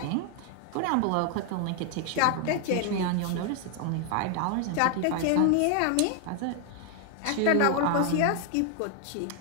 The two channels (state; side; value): different; both; correlation 0.00